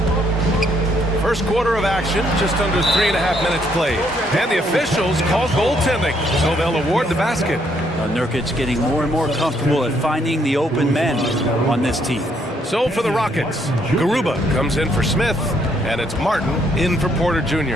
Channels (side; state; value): both; normal; correlation 0.71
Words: First quarter of action, just under 3.5 minutes played. And the officials call goaltending, so they'll award the basket. Nurkic getting more and more comfortable at finding the open men on this team. So for the Rockets, Garuba comes in for Smith, and it's Martin in for Porter